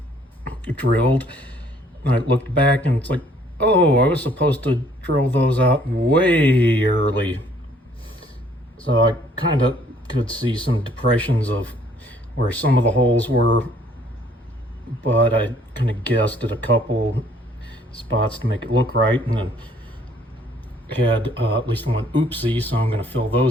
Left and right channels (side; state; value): both; normal; correlation 0.61